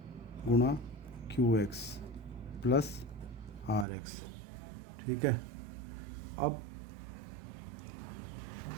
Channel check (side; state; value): left; drops out; at 3.9 s